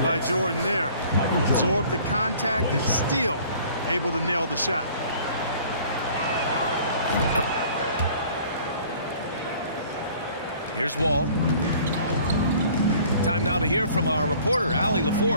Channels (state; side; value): inverted; both; correlation -0.52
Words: by Jordan there. Absorbed the contact and still able to nail the shot. Here's Wall. Time now to hear from our reporter, Allie